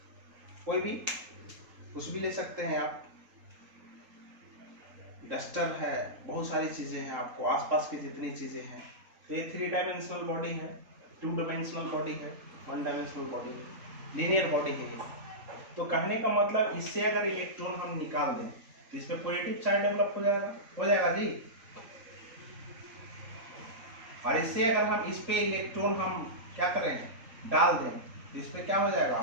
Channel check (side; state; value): left; late; 3.8 ms